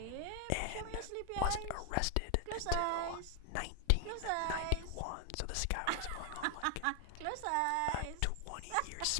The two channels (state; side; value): different; both; correlation 0.00